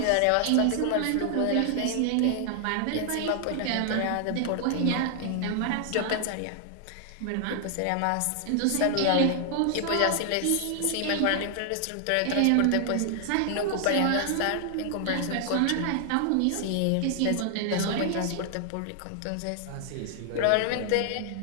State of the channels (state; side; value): different; both; correlation 0.00